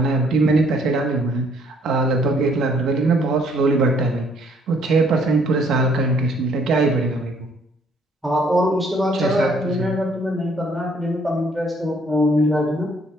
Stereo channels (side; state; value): both; normal; correlation 0.64